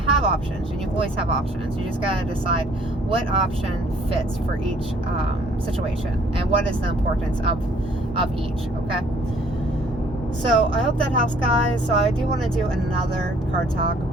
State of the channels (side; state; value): both; normal; correlation 0.60